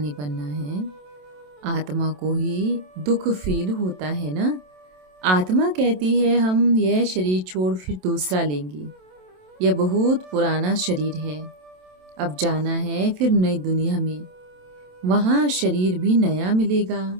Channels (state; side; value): late; left; 27 ms